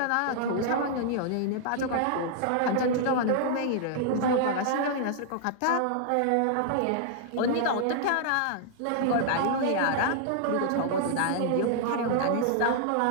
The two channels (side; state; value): both; different; correlation -0.01